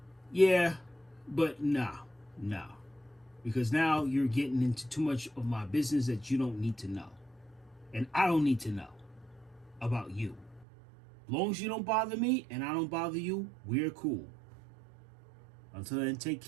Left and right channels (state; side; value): drops out; left; at 10.7 s